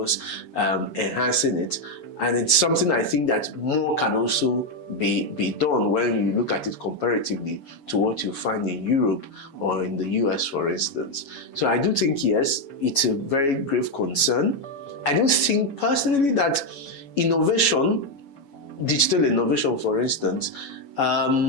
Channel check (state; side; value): late; right; 7.1 ms